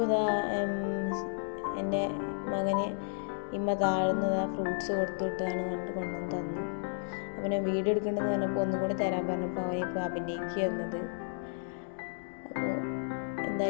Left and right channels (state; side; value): silent; right; digital silence